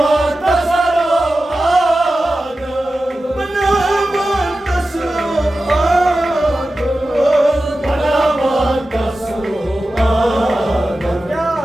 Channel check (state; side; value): normal; both; correlation 0.94